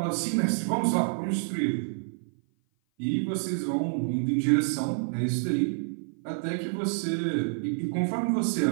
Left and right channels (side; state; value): left; silent; 56 dB below the other